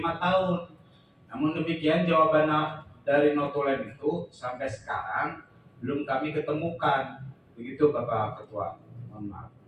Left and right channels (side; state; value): both; identical; correlation 1.00